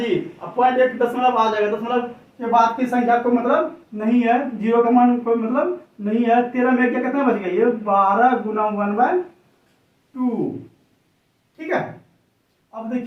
अब 0.1 दशमलव आ जाएगा, दशमलव के बाद की संख्या को मतलब नहीं है, जीरो का मान कोई मतलब नहीं है। 13 में क्या कितना बच गया, ये 12 गुना 1/2, ठीक है। अब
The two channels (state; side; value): identical; both; correlation 1.00